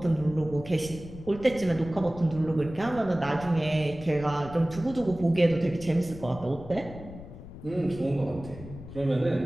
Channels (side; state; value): left; noise; rumble, 14 dB below the sound